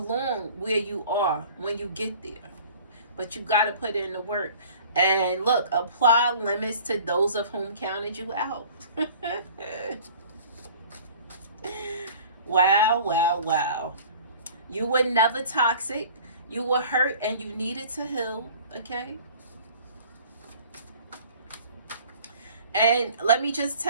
where you are when you get there. But you got to put in the work. And look, apply limits to those of whom counted you out. Wow. You were never toxic. You were hurt and you needed to heal, okay? And let me just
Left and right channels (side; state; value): both; inverted; correlation -0.47